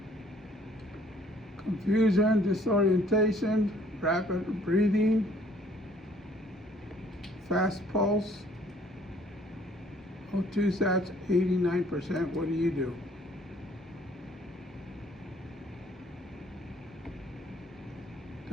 Confusion, disorientation, rapid breathing, fast pulse, O2 sats 89%. What do you do?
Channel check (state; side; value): normal; both; correlation 0.59